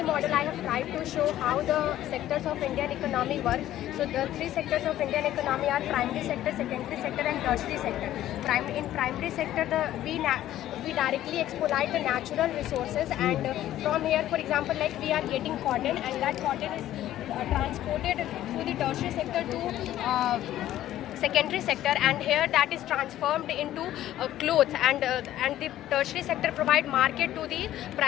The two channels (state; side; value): quieter; right; 13.2 dB